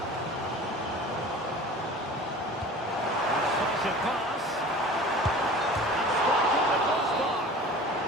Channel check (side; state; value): both; normal; correlation 0.41